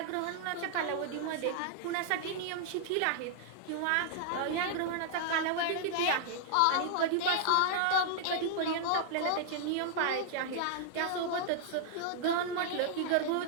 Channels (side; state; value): both; different; correlation -0.01